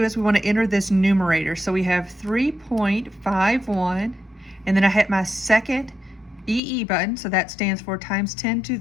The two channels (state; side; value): drops out; right; at 6.6 s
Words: is we want to enter this numerator. So we have 3.51, and then I hit my second EE button, so that stands for times 10 to